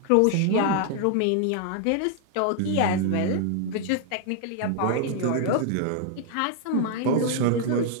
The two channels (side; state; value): both; different; correlation 0.00